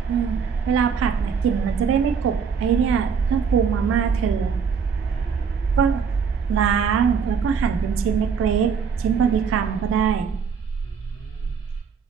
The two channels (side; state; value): left; quieter; 6.3 dB